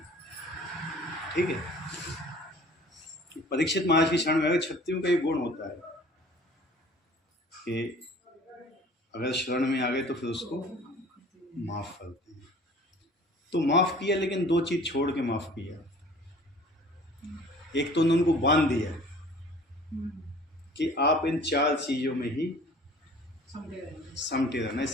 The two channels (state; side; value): normal; both; correlation 0.48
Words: ठीक है, परीक्षित महाराज की शरण में आ गए। क्षत्रियों का एक गुण होता है कि अगर शरण में आ गए तो फिर उसको माफ करते हैं। तो माफ़ किया, लेकिन दो चीज़ छोड़ के माफ़ किया। एक तो उन्होंने उनको बांध दिया कि आप इन 4 चीज़ों में ही समटे रहना,